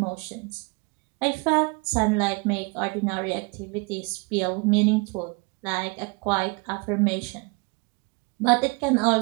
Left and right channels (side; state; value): left; quieter; 29.9 dB